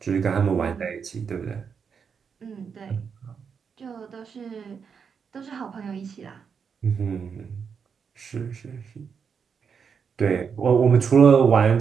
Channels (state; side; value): quieter; left; 6.4 dB